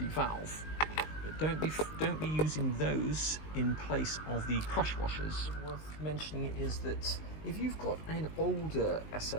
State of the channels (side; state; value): right; late; 19 ms